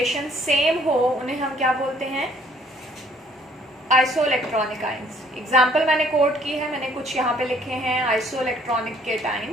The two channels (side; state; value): both; normal; correlation 0.61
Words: सेम हो उन्हें हम क्या बोलते हैं? Isoelectronic ions. एग्जाम्पल मैंने कोट की है, मैंने कुछ यहाँ पे लिखे हैं आइसो इलेक्ट्रॉनिक